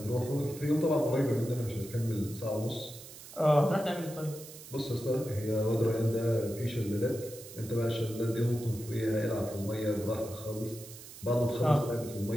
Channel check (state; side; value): noise; right; hiss, 15 dB below the sound